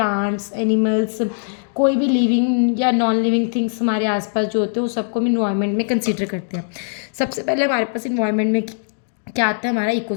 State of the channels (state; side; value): silent; right; digital silence